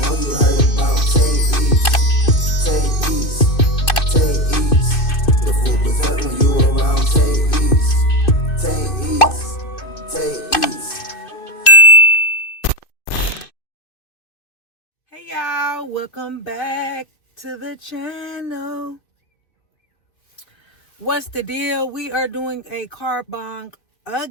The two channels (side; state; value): right; late; 2.5 ms